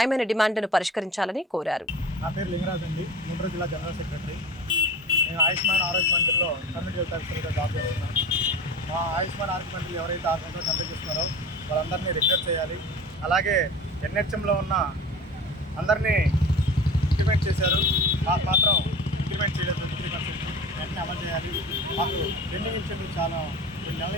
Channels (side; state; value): both; normal; correlation 0.36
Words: డిమాండ్లను పరిష్కరించాలని కోరారు. నా పేరు లింగరాజ్ అండి, గుంటూరు జిల్లా జనరల్ సెక్రటరీ. నేను ఆయుష్మాన్ ఆరోగ్య మంత్రిలో కమ్యూనిటీ హెల్త్ ఆఫీసర్గా జాబ్ చేస్తున్నాను. మా ఆయుష్మాన్ ఆరోగ్య మంత్రి ఎవరైతే 6 సంవత్సరాలు కంప్లీట్ చేస్తున్నారో వాళ్ళందరినీ రెగ్యులర్ చేయాలి. అలాగే ఎన్హెచ్ఎంలో ఉన్న అందరినీ ఇంప్లిమెంట్ చేశారు, మాకు మాత్రం ఇంప్లిమెంట్ చేయలేదు. 3% వెంటనే అమలు చేయాలి. మాకు పెండింగ్ ఇన్సెంటివ్ చాలా 2 నెలల